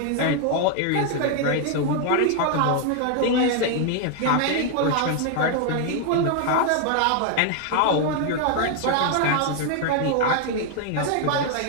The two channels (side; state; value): both; different; correlation 0.00